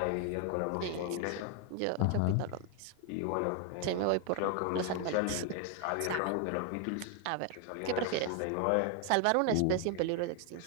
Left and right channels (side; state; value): both; different; correlation 0.01